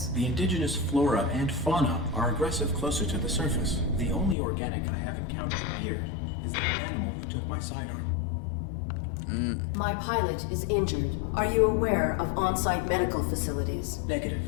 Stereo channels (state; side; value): drops out; right; at 4.4 s